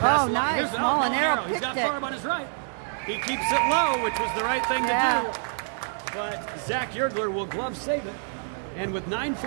the line. Here's Molinaro. He's got Farb on his right. He keeps it low, which was the right thing to do. But Zach Yergler will glove save it. And with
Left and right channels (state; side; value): silent; left; 61 dB below the other